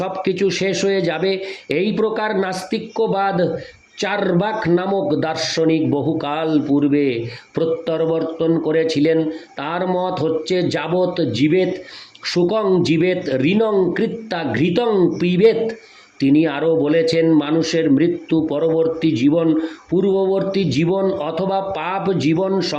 কিছু শেষ হয়ে যাবে। এই প্রকার নাস্তিক্যবাদ চার্বাক নামক দার্শনিক বহুকাল পূর্বে প্রত্যাবর্তন করেছিলেন। তার মত হচ্ছে যাবৎ জীবেত সুখং জীবেত ঋণং কৃত্যা ঘৃতং পিবেত। তিনি আরও বলেছেন, মানুষের মৃত্যু পরবর্তী জীবন, পূর্ববর্তী জীবন অথবা পাপ জীবন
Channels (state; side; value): identical; both; correlation 1.00